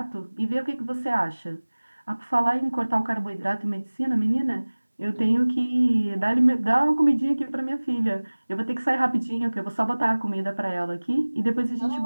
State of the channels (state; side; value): inverted; both; correlation -1.00